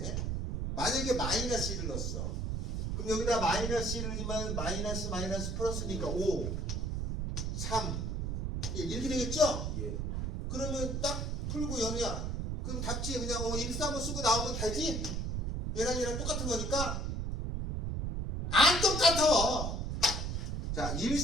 만약에 -1을 넣었어. 그럼 여기다 -1을 넣으면 마이너스 플러스니까 5, 3, 1 이렇게 되겠죠? 예. 그러면 딱 풀고 연우야. 그럼 답지에 그냥 1, 3을 쓰고 나오면 되지? 얘랑 똑같은 거니까 안 똑같아. 자,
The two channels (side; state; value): right; noise; rumble, 1 dB below the sound